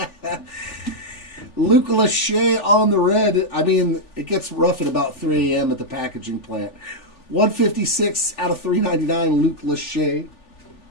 Luke Lachey on the red. I mean, it gets rough at about 3 a.m. at the packaging plant. 156 out of 399, Luke Lachey.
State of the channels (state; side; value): late; right; 3.4 ms